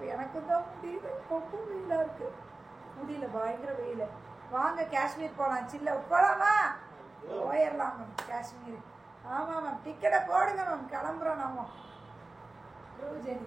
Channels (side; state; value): left; quieter; 3.1 dB